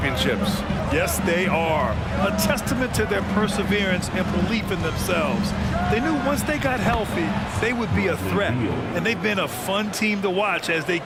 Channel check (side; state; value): both; identical; correlation 1.00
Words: Yes, they are. A testament to their perseverance and belief in themselves. They knew once they got healthy, they would be a threat. And they've been a fun team to watch as they